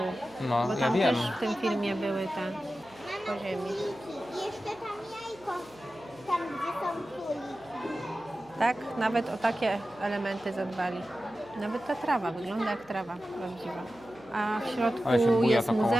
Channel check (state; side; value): noise; right; hum, 28 dB below the sound